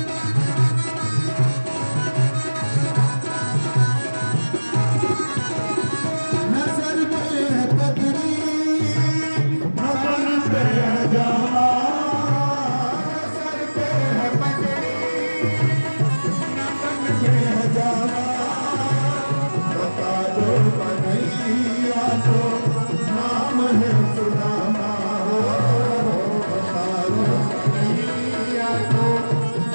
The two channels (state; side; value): inverted; both; correlation -1.00